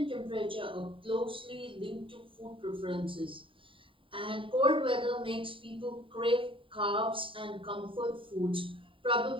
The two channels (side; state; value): left; late; 0.25 ms